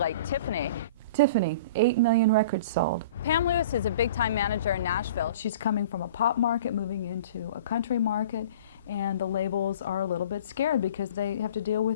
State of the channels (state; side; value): inverted; both; correlation -0.43